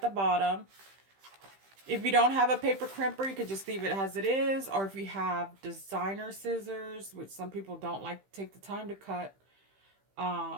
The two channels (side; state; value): left; late; 15 ms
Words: the bottom. If you don't have a paper crimper, you could just leave it as it is. Or if you have designer scissors, which some people don't like to take the time to cut,